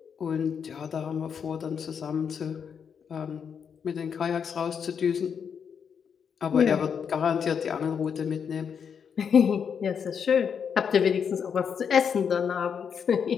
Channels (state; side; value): quieter; right; 7.1 dB